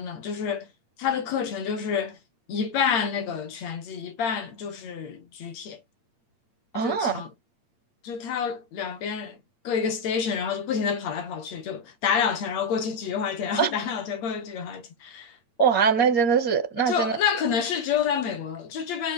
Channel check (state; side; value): late; right; 8.6 ms